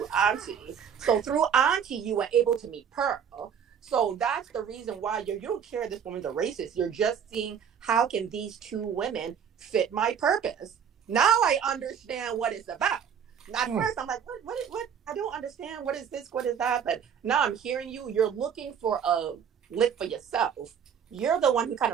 Aunty. So through Aunty, you were able to meet Pearl. So that's the reason why you don't care this woman's a racist. You're just seeing how can these two women fit my purpose. Now I understand what it's about. At first, I'm like, what? I don't understand. What is this? What is that? But now I'm hearing you. You're looking for a lick for yourself. You're the one who kind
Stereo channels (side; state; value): left; quieter; 7.8 dB